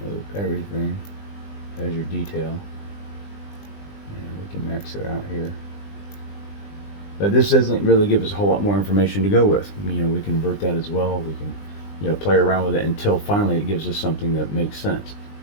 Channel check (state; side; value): late; right; 20 ms